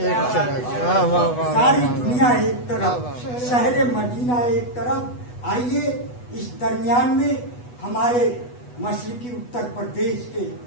ساری دنیا ایک طرف شہر مدینہ ایک طرف. آئیے اس درمیان میں ہمارے مشرقی اتر پردیش کے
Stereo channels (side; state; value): right; late; 8.2 ms